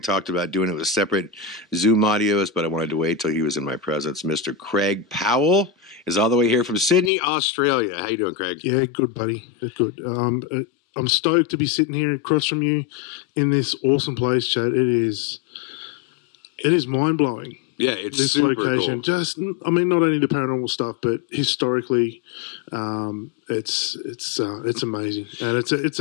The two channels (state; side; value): drops out; right; at 7.1 s